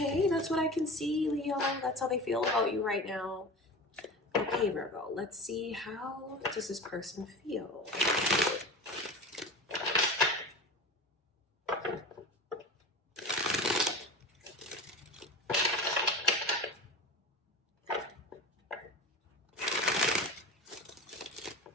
that's what I can see, Leo. That's how they feel about you right now. Okay, Virgo, let's see, how does this person feel?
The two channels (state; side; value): normal; both; correlation 0.31